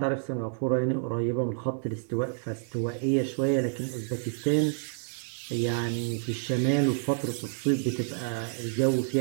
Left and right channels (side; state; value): left; silent; digital silence